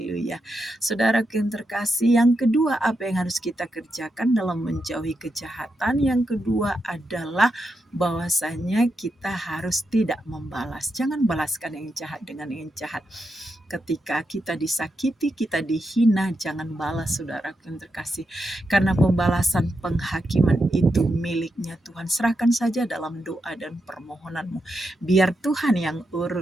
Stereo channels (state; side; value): normal; both; correlation 0.85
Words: Saudara yang terkasih, yang kedua apa yang harus kita kerjakan dalam menjauhi kejahatan? Yang kedua adalah bahwasanya kita harus tidak membalas. Jangan balaskan yang jahat dengan yang jahat. Ketika kita disakiti, kita dihina, jangan balas, saudara yang terkasih. Karena pembalasan penghakiman itu miliknya Tuhan. Serahkan saja dalam doa dan permohonanmu. Biar Tuhan yang